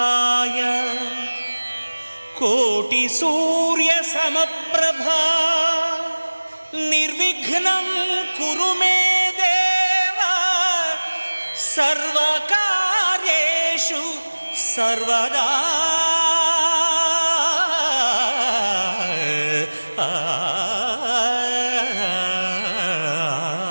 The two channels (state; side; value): inverted; both; correlation -1.00